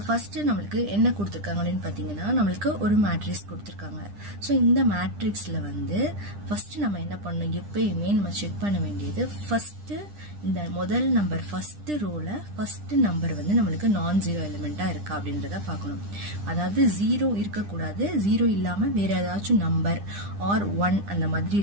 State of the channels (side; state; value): left; late; 9.9 ms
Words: ஃபர்ஸ்ட் நம்மளுக்கு என்ன கொடுத்துருக்காங்க அப்படின்னு பாத்தீங்கன்னா நம்மளுக்கு ஒரு மேட்ரிக்ஸ் கொடுத்துருக்காங்க. ஸோ இந்த மேட்ரிக்ஸ்ல வந்து ஃபர்ஸ்ட் நம்ம என்ன பண்ணணும், எப்பயுமே நம்ம செக் பண்ண வேண்டியது ஃபர்ஸ்ட் இந்த முதல் நம்பர் ஃபர்ஸ்ட் ரோல ஃபர்ஸ்ட் நம்பர் வந்து நம்மளுக்கு நான் ஜீரோ எலிமெண்டா இருக்கா அப்படின்றத பார்க்கணும். அதாவது 0 இருக்கக்கூடாது, 0 இல்லாம வேற ஏதாச்சும் நம்பர் ஆர் 1 அந்த மாதிரி